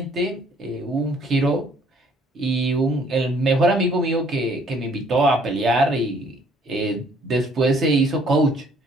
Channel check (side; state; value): both; normal; correlation 0.61